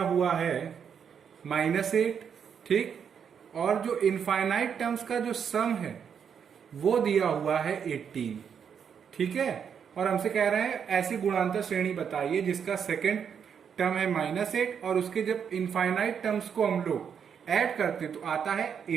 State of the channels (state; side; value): quieter; left; 7.4 dB